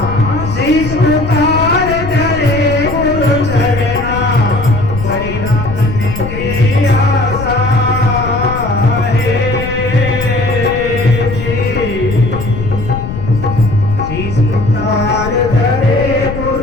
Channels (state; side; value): noise; left; rumble, 7 dB below the sound